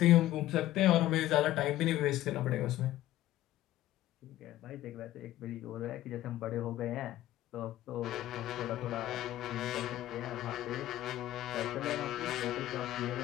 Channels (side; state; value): right; quieter; 14.4 dB